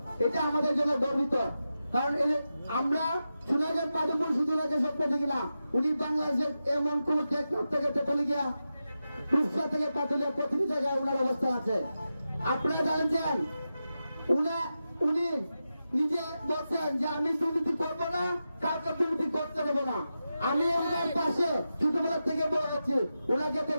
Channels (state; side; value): inverted; both; correlation -0.91